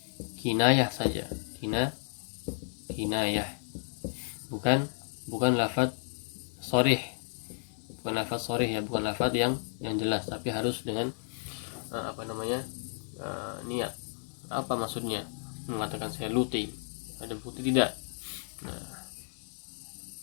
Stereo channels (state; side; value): silent; right; digital silence